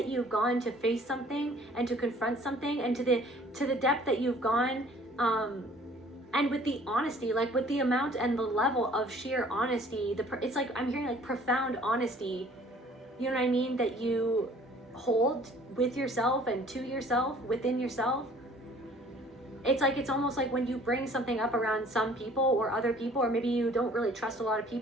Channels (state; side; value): normal; both; correlation 0.54